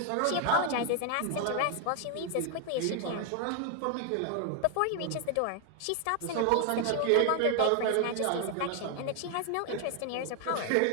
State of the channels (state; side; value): different; both; correlation 0.00